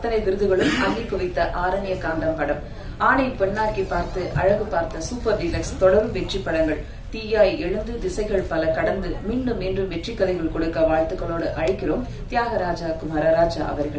விருதுகளும் அள்ளி குவித்த ஆரண்ய காண்டம் படம், ஆணை பெண்ணாக்கி பார்த்து, அழகு பார்த்த, சூப்பர் டீலக்ஸ் தொடரும் வெற்றி படங்கள், தீயாய் எழுந்து திசைகள் பல கடந்து மீண்டும் மீண்டும் வெற்றி கதைகள் கொடுக்க வாழ்த்துக்களோடு அழைக்கிறோம் தியாகராஜா குமாரராஜா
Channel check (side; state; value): both; identical; correlation 1.00